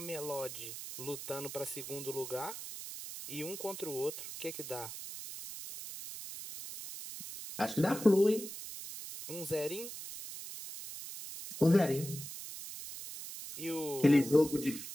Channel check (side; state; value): right; noise; hiss, 9 dB below the sound